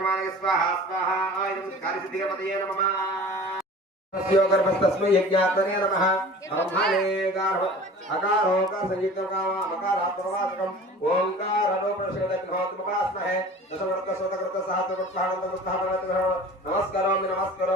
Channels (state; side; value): normal; both; correlation 0.42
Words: स्वाहा स्वाहा इदं कार्यसिद्धिगणपतये नमः तस्यो गर्भस्तस्मै यज्ञात्मने नमः ब्रह्मणे गार्भ अकारो का संयुक्तकामा मकारात्मवाचकम् ओंकारो प्रशोदग्नोत्मपास्महे दशवर्तसोतकृत सहस्रकृत्साहनन्तमुत्थापनमः नमस्करोमि